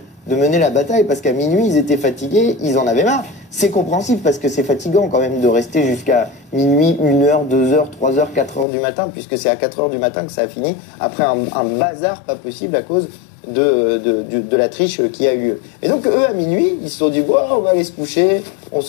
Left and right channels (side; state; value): right; drops out; at 8.7 s